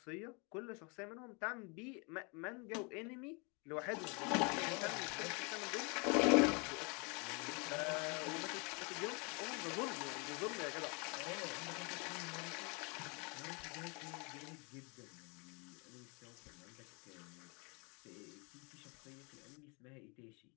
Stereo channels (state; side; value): quieter; right; 32.1 dB